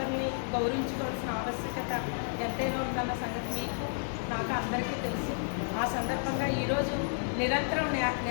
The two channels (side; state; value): right; silent; 57 dB below the other